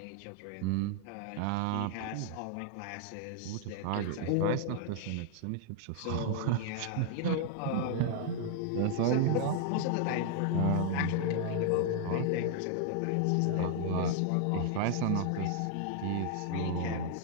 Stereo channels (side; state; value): both; different; correlation 0.00